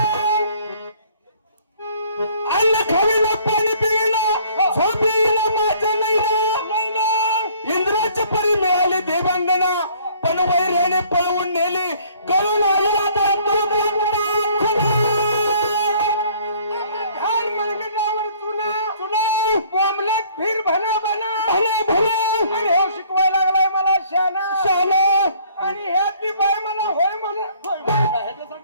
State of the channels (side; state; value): both; inverted; correlation -0.58